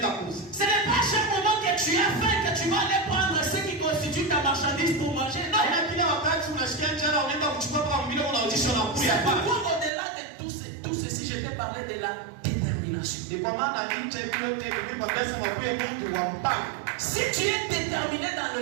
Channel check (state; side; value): drops out; left; at 9.9 s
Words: Ce n'est pas à chaque moment que tu as faim que tu vas aller prendre ce qui constitue ta marchandise pour manger. Non. C'est pourquoi au-delà de tout ceci, je vais parler de la détermination. Si tu es déterminé dans